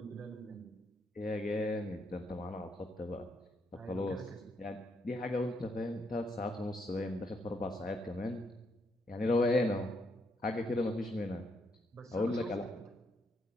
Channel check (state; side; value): normal; both; correlation 0.76